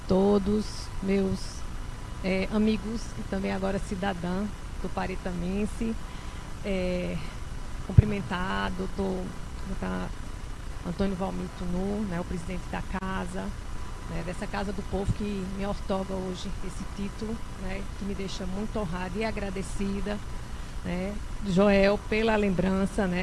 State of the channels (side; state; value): both; identical; correlation 1.00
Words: todos, meus amigos e também agora cidadã tuparetamense. Cumprimentar doutor Antônio Valmir Tunu, né, o presidente da casa, né, dessa Casa do Povo, que me outorga hoje esse título, né, que me deixa muito honrada e agradecida, né, Joel, pela lembrança,